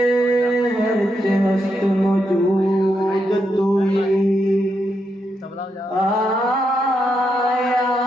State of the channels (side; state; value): both; normal; correlation 0.82